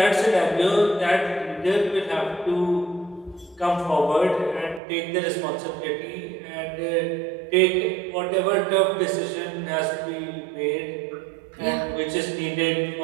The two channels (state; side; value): drops out; left; at 4.8 s